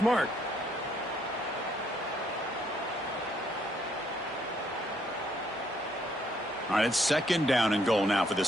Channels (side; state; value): both; normal; correlation 0.69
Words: All right, it's 2nd down and goal now for